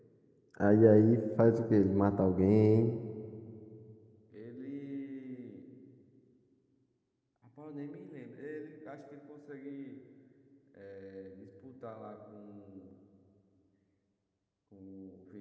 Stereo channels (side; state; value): both; identical; correlation 1.00